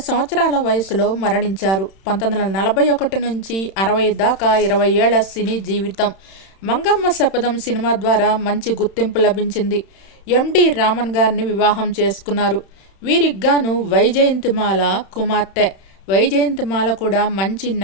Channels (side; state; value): right; late; 31 ms